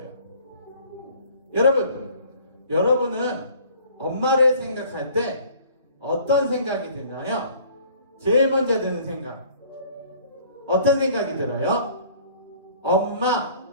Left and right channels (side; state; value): both; inverted; correlation -0.53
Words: 여러분은 엄마를 생각할 때 어떤 생각이 드나요? 제일 먼저 드는 생각. 어떤 생각이 들어요?